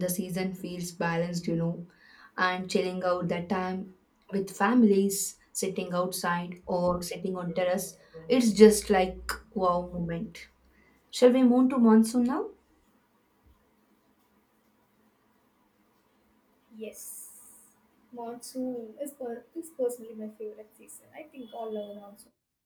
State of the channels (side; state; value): both; identical; correlation 1.00